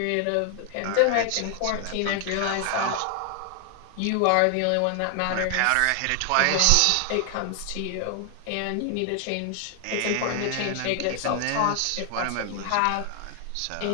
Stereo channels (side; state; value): both; different; correlation 0.00